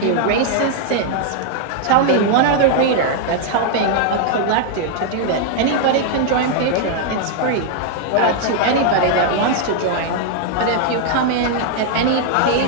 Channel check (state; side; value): different; both; correlation 0.00